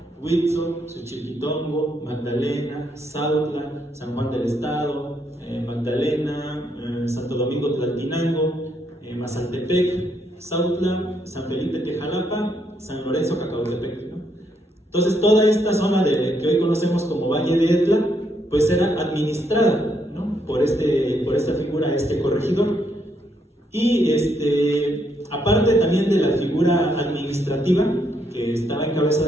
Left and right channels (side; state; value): both; normal; correlation 0.75